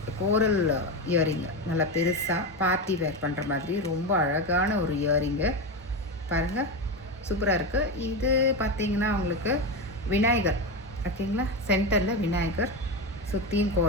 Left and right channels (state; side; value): normal; both; correlation 0.15